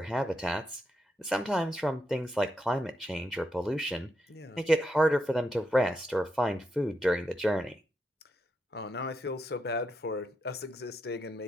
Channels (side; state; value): both; normal; correlation 0.83